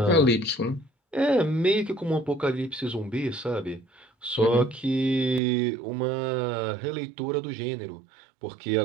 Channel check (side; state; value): left; drops out; at 5.4 s